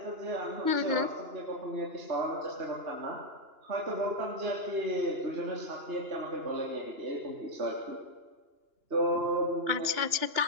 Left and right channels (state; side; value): late; left; 2.9 ms